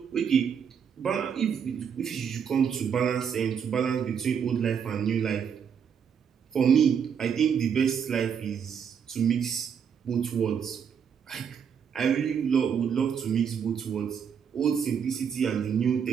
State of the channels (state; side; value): quieter; left; 7.4 dB